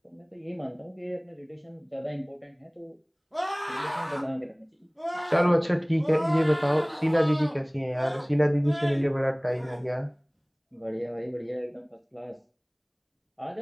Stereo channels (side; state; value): both; identical; correlation 1.00